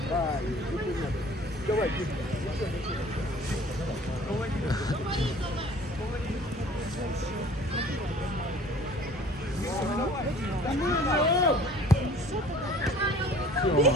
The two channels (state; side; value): normal; both; correlation 0.50